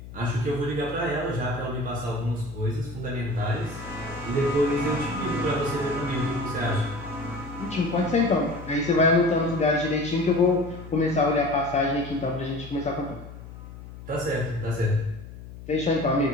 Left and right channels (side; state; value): left; noise; hum, 14 dB below the sound